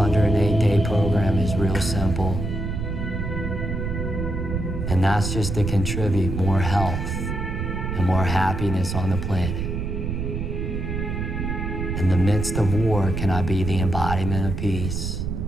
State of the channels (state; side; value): noise; right; rumble, 3 dB below the sound